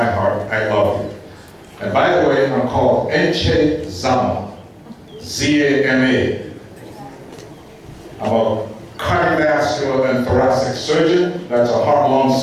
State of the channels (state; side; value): identical; both; correlation 1.00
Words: heart. I love you. And by the way, I'm called Zama, Z-A-M-A. I'm a cardiovascular and thoracic surgeon. That's a heart-lung